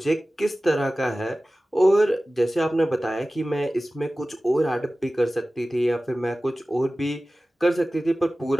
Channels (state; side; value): normal; both; correlation 0.96